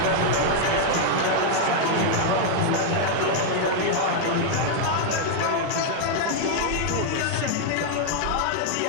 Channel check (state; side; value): different; both; correlation 0.00